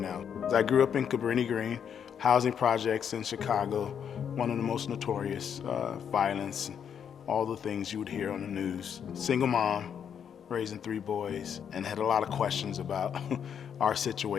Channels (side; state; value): right; quieter; 8.0 dB